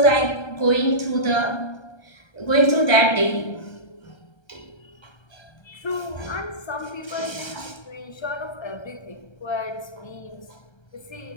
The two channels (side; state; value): right; late; 1.3 ms